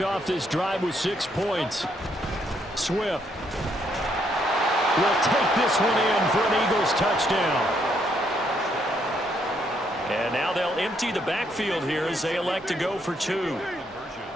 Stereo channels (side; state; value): both; normal; correlation 0.73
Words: off this drive with 6 points. Swift will take this one in for an Eagles touchdown. And now they'll empty the backfield here as they elect to go for 2.